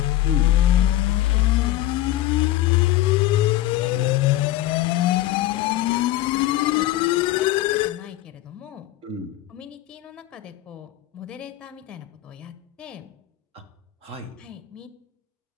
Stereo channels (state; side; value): quieter; right; 14.9 dB